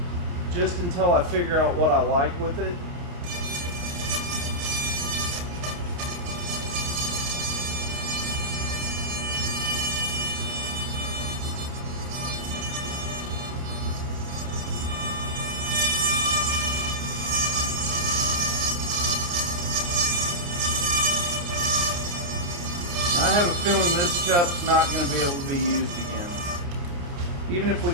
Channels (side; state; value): left; late; 29 ms